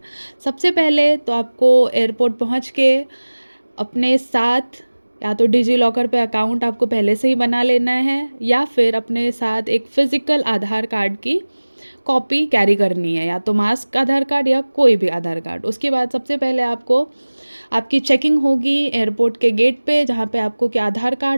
सबसे पहले तो आपको एयरपोर्ट पहुंच के अपने साथ या तो डिजी लॉकर पे अकाउंट आपको पहले से ही बना लेना है, या फिर अपने साथ एक फ़िज़िकल आधार कार्ड की कॉपी कैरी करनी है, या तो मास्क आधार कार्ड या कोई भी आधार कार्ड। उसके बाद सबसे पहले आपको आपकी चेकिंग होगी एयरपोर्ट के गेट पे, जहाँ पे आपको क्या आधार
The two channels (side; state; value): both; inverted; correlation -1.00